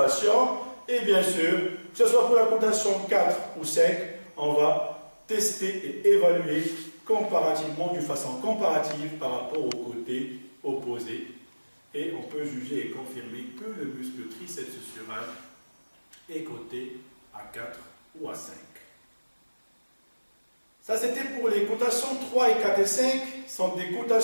Et bien sûr, que ce soit pour la cotation 4 ou 5, on va tester et évaluer comparativement, d'une façon comparative par rapport au côté opposé. Et on peut juger et confirmer que le muscle triceps sural est coté à 4 ou à 5. Ça, c'était pour les cotations 3 et 4 et 5. Ce sont des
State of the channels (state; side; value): inverted; both; correlation -1.00